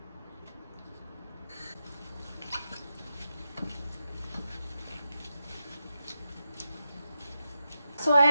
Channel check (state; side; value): inverted; both; correlation -0.88